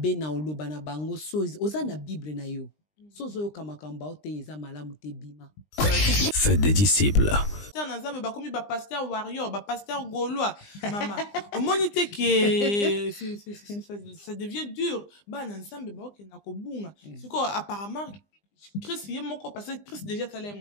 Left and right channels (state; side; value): late; right; 20 ms